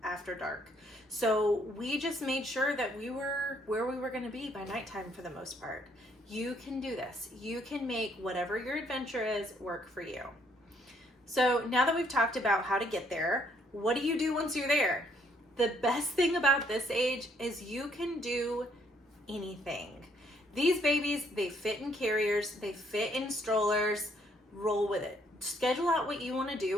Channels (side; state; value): both; normal; correlation 0.68